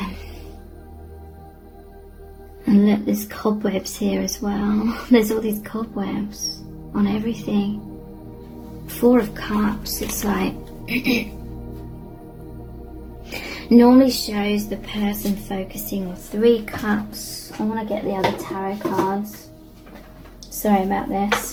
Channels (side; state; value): both; identical; correlation 1.00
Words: And look, there's cobwebs here as well. There's all these cobwebs on everything. 4 of Cups, it's like normally shows the person focusing on 3 Cups. I want to get the other tarot cards. Sorry about